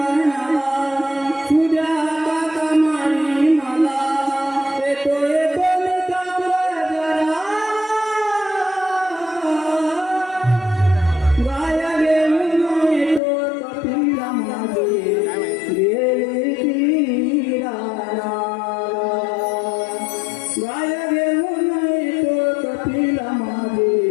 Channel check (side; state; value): right; drops out; at 13.2 s